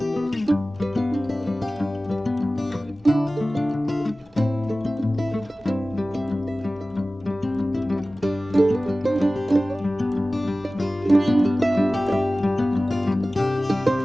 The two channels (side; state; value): both; normal; correlation 0.97